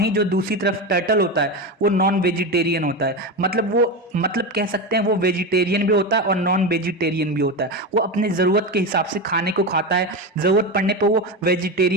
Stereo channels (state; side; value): normal; both; correlation 0.18